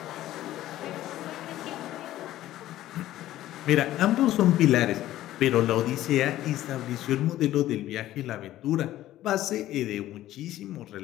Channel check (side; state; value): right; quieter; 14.3 dB